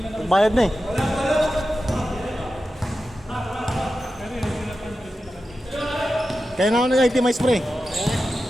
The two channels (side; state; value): both; normal; correlation 0.92